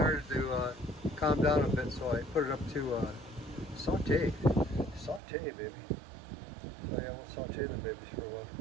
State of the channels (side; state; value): left; drops out; at 5.2 s